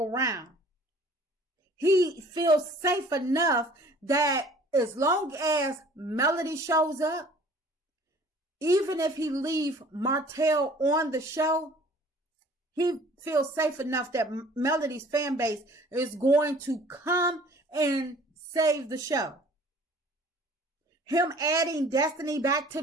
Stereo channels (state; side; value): normal; both; correlation 0.51